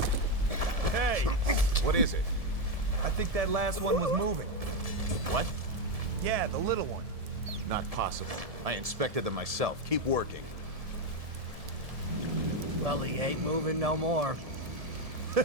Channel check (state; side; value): late; left; 1.7 ms